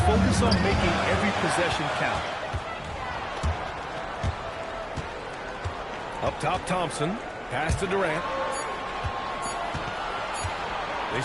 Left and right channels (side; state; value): both; identical; correlation 1.00